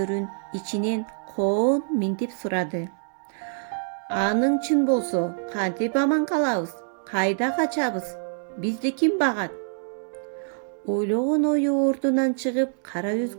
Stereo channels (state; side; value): silent; left; digital silence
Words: ичинен коон минтип сурады: "Аның чын болсо, кантип аман калабыз? Кайда качабыз? Бизди ким багат?" Ойлогон ою ордунан чыгып, кара